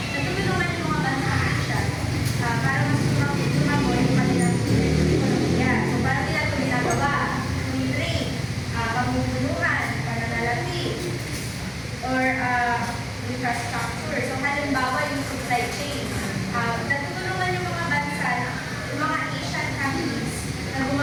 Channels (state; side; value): identical; both; correlation 1.00